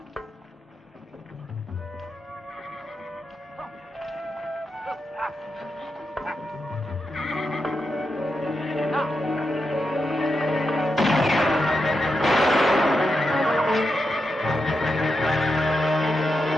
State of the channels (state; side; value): normal; both; correlation 0.86